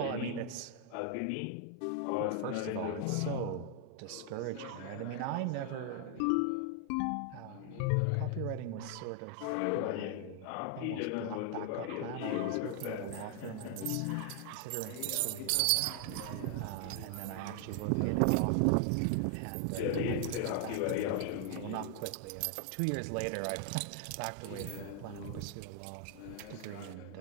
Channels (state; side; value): different; both; correlation 0.00